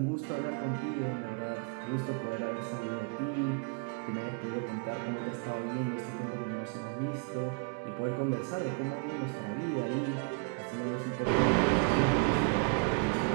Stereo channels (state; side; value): quieter; left; 37.3 dB